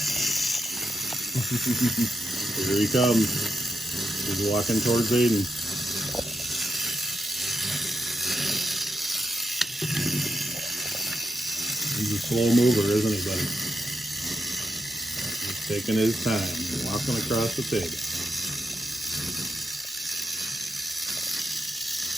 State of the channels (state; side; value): normal; both; correlation 0.84